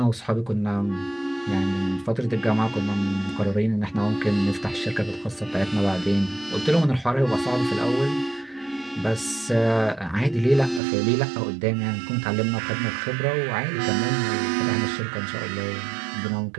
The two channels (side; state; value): left; drops out; at 10.8 s